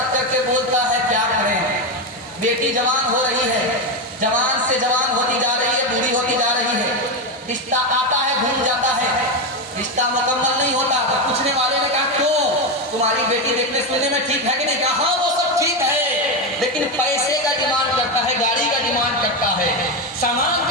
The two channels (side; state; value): both; normal; correlation 0.12